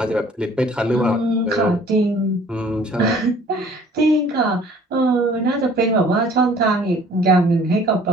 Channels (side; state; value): both; normal; correlation 0.53